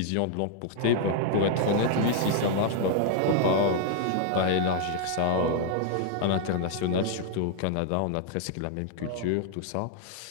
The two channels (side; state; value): both; different; correlation 0.00